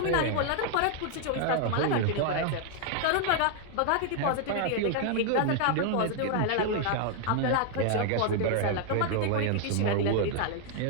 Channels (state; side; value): different; both; correlation 0.00